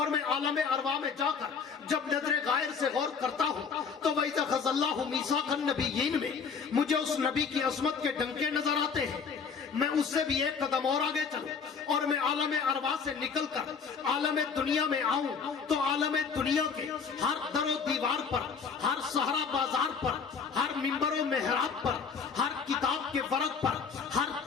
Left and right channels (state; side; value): quieter; right; 5.8 dB